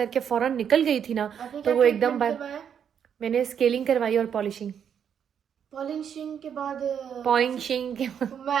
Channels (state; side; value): quieter; left; 8.1 dB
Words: फ़ौरन निकल गई थी ना, तो वो एकदम मैंने स्केलिंग करवाई और पॉलिशिंग पॉलिशिंग के बाद मैं